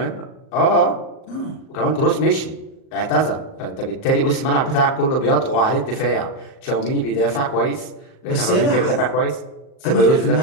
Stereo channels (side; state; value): right; late; 38 ms